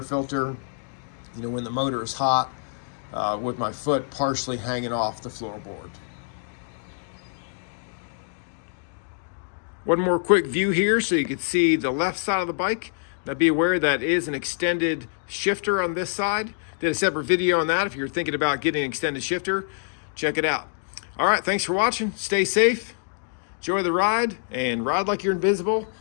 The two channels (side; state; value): right; silent; digital silence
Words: filter, you know, when the motor is hot, with my foot partially hanging off the floorboard. One more quick view here so you can see the left side of the bike. Now be aware that is an extended shifter on this side. Did a separate video on that. If you're thinking about getting an extended shifter, check it out. All right, thanks for watching. Stay safe, enjoy the ride, and ride like you're invisible,